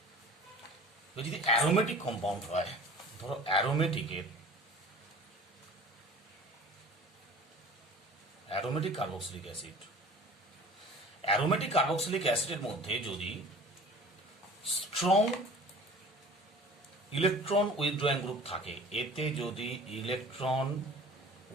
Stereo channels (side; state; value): both; normal; correlation 0.43